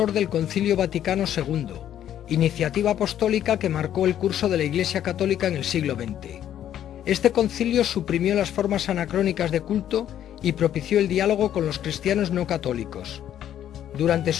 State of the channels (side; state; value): right; quieter; 10.8 dB